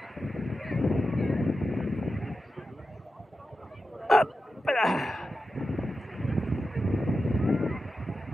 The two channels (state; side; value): normal; both; correlation 0.91